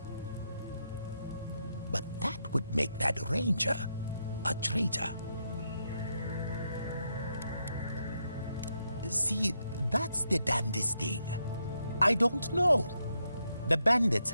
But that would make that Ranger a traitor. See, that's the damnedest thing. I don't know. The bandits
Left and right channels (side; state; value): both; inverted; correlation -0.81